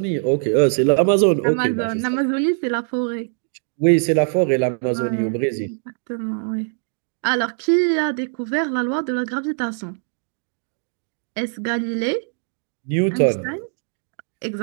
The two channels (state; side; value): silent; left; 64 dB below the other